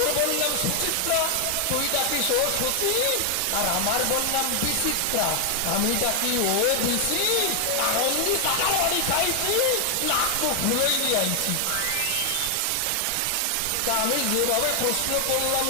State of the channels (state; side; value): different; both; correlation 0.00